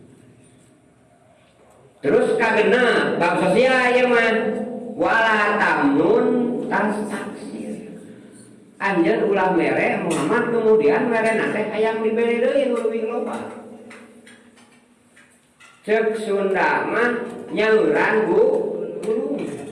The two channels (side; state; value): both; identical; correlation 1.00